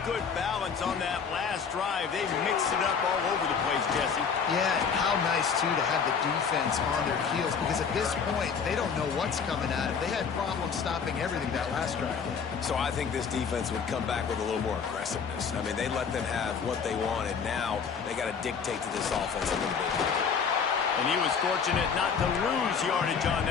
good balance on that last drive. They mixed it up all over the place, Jesse. Yeah, and how nice, too, to have the defense on their heels, because at this point, they don't know what's coming at them. They had problems stopping everything that last drive. So I think this defense would come back with a little more aggressiveness. I mean, they let them have what they wanted. Now they got to dictate to this offense a little bit. And he was fortunate not to lose yardage on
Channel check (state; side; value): quieter; right; 6.2 dB